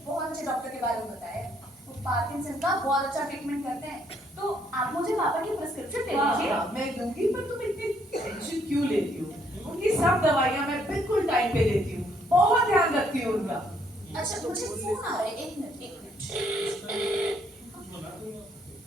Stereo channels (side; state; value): both; normal; correlation 0.69